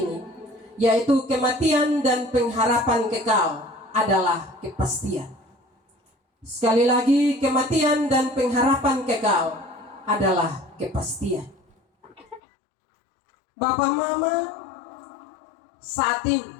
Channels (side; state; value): right; drops out; at 12.4 s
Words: yaitu kematian dan pengharapan kekal adalah kepastian. Sekali lagi, kematian dan pengharapan kekal adalah kepastian. Bapak Mama, saat ini